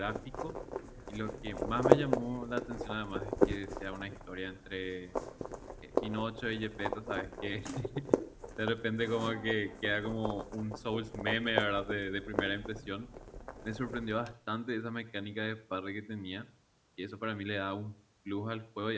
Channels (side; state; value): both; identical; correlation 1.00